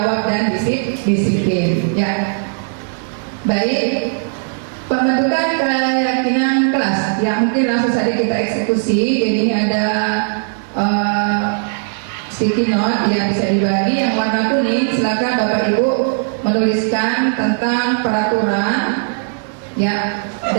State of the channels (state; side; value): silent; left; 68 dB below the other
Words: dan disiplin. Ya, baik. Pembentukan keyakinan kelas. Ya, mungkin langsung saja kita eksekusi. Jadi ini ada sticky note yang bisa dibagi. Yang warna kuning, silakan Bapak Ibu menuliskan tentang peraturan, ya.